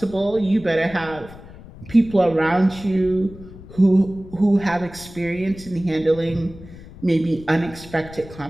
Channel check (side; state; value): left; noise; rumble, 17 dB below the sound